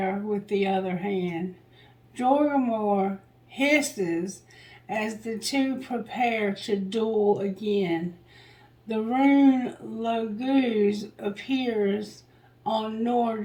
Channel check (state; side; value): identical; both; correlation 1.00